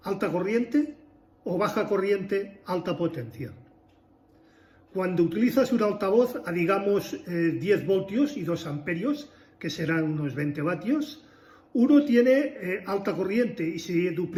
alta corriente o baja corriente, alta potencia? Cuando utilizas un altavoz a, digamos, 10 voltios y 2 amperios, que serán unos 20 vatios, uno tiene alta corriente y se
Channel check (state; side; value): identical; both; correlation 1.00